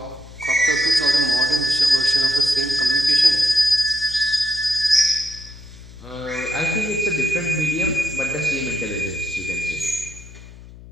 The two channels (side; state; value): left; noise; hum, 18 dB below the sound